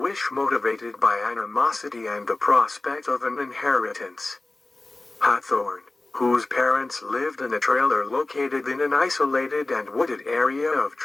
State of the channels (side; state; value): right; quieter; 3.0 dB